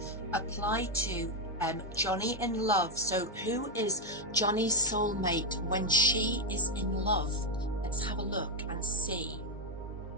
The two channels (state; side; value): normal; both; correlation 0.04